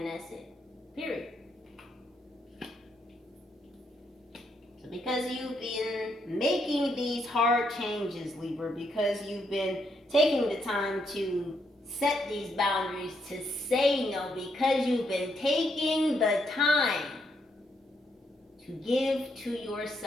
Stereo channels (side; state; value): both; normal; correlation 0.77